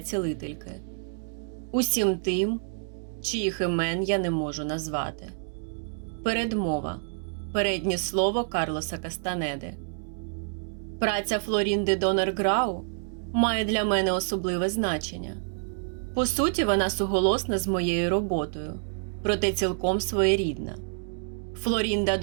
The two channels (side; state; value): left; silent; digital silence